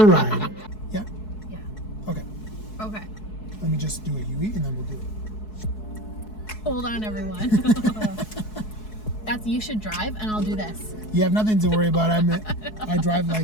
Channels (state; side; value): late; right; 4.7 ms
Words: a ride. Yeah. Yeah. Okay. Okay. Let me just do a UE and then we'll do it. Hold on, everyone. That's you should drive, and I'll do this. You have nothing to worry about. I drive